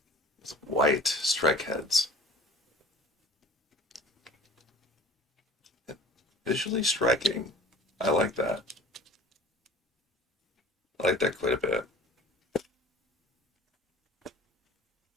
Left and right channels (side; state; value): both; normal; correlation 0.45